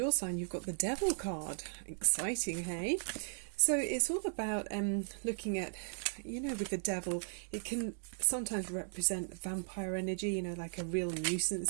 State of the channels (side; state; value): left; silent; digital silence